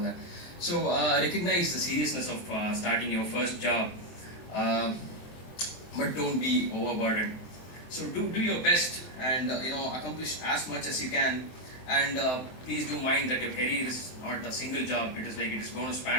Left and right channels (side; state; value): right; late; 23 ms